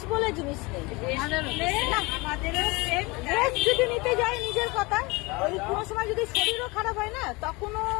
বলে জিনিস নেই। রেস্ট যদি নিতে যাই নিজের কথা, ওই কোনো সময় যদি শরীরও খারাপ হয় না, তখনও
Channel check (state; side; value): quieter; right; 25.0 dB